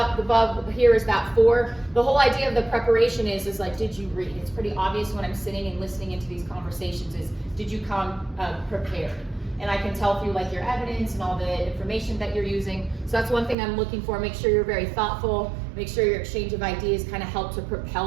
above, here is that 4. The whole idea of the preparation is like, did you read? It's pretty obvious when I'm sitting and listening into these conversations is, did you come prepared? And I can tell through like your evidence and all the information that you're using. So that's one thing I'm looking for. Make sure you're very thoughtful. Make sure your exchange of ideas kind of help to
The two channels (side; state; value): left; drops out; at 13.6 s